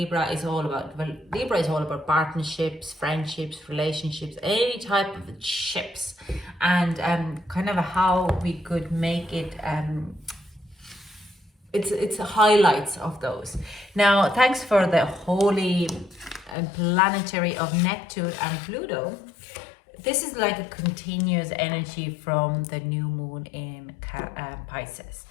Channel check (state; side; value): drops out; right; at 16.6 s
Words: is all about, well, Libra is all about partnerships, friendships, relationships, any type of ships, and kind of how we could make it it's highlights of those. Now, thanks for the holy and planetary of Neptune and Pluto. This is like a continuous energy from the new moon in Pisces.